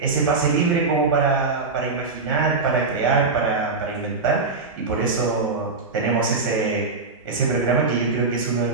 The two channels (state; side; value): quieter; left; 4.1 dB